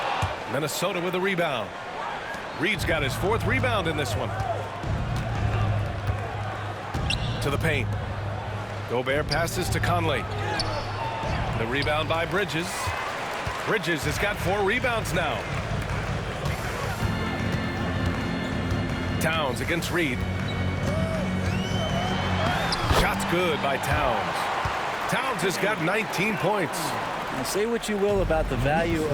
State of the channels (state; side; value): identical; both; correlation 1.00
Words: Minnesota with a rebound. Reed's got his 4th rebound in this one. To the paint. Gobert passes to Conley. The rebound by Bridges. Bridges has got 4 rebounds now. Towns against Reed. Shot's good by Towns. Towns has got 19 points. Now, say what you will about the value